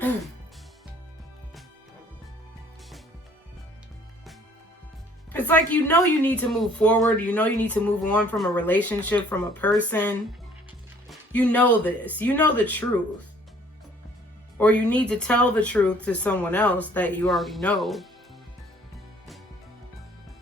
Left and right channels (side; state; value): both; normal; correlation 0.57